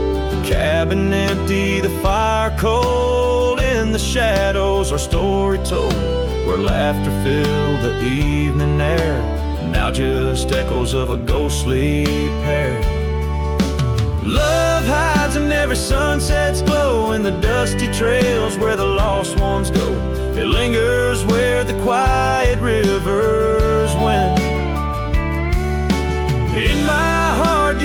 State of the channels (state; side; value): identical; both; correlation 1.00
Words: The cabin empty, the fire cold, in the shadows our story told, where laughter filled the evening air, now just echoes of a ghostly pair. Love hides in every sunset's glow, in the dusty trails where the lost ones go. It lingers where the quiet rivers wend. In my heart